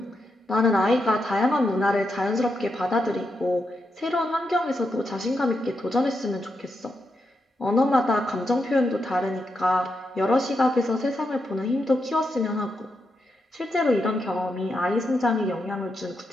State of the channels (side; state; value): both; normal; correlation 0.84